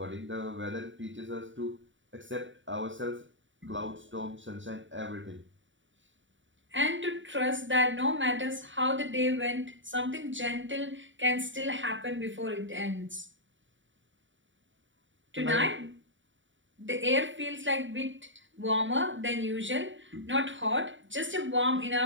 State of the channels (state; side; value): late; left; 0.55 ms